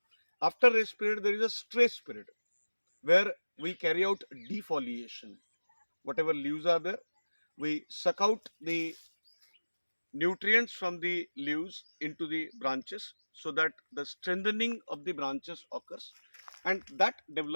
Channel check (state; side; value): inverted; both; correlation -1.00